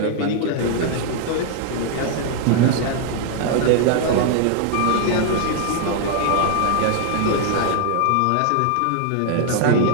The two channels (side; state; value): both; different; correlation 0.00